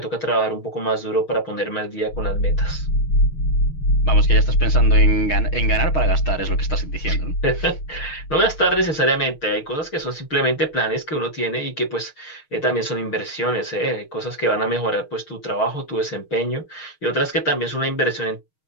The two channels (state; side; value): late; right; 6.4 ms